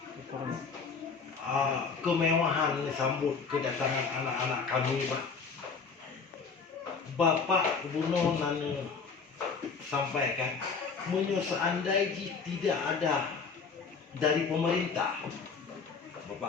kemewahan sambut kedatangan anak-anak kami Pak. Bapak Gubernur nana sampaikan, seandainya tidak ada dari pemerintah,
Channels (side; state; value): right; quieter; 5.1 dB